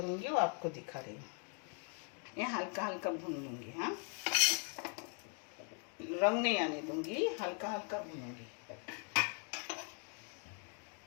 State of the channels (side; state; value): right; quieter; 36.8 dB